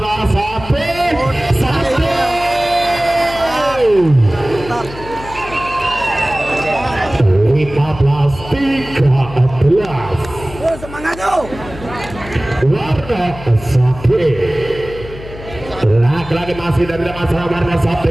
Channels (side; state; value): left; noise; hum, 14 dB below the sound